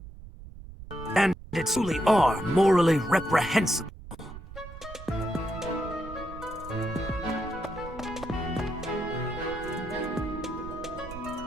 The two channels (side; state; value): right; noise; rumble, 14 dB below the sound